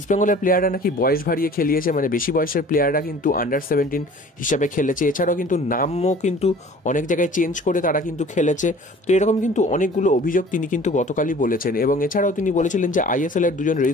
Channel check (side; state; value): both; normal; correlation 0.47